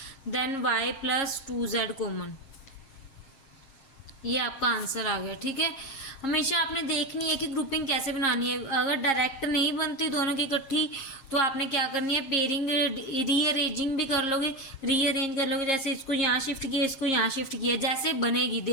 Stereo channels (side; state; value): right; late; 6.5 ms